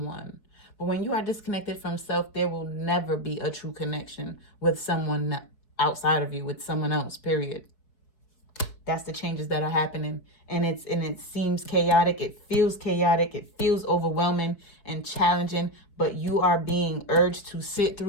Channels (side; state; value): right; late; 4.9 ms